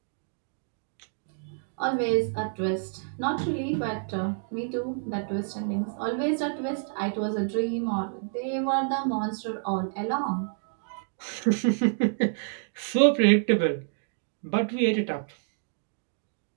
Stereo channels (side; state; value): left; silent; digital silence